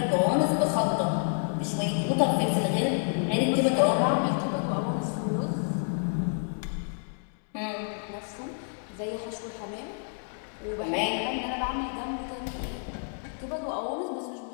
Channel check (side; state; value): right; silent; 59 dB below the other